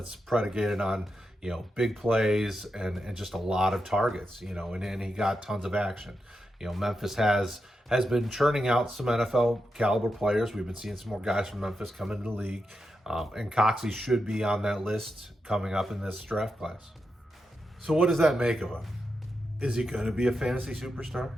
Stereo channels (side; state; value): both; normal; correlation 0.87